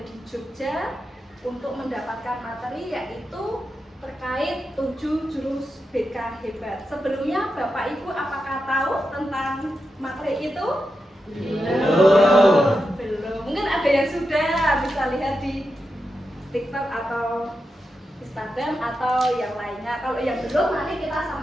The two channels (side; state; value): both; normal; correlation 0.88